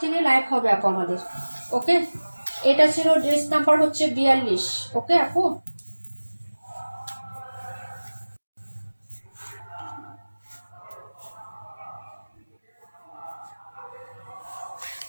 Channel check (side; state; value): both; inverted; correlation -1.00